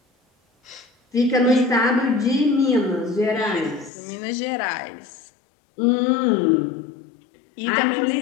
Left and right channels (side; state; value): right; drops out; at 3.9 s